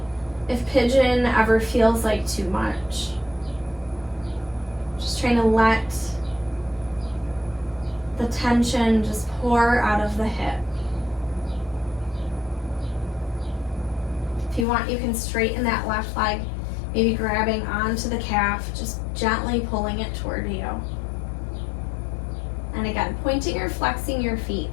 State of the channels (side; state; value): right; drops out; at 14.7 s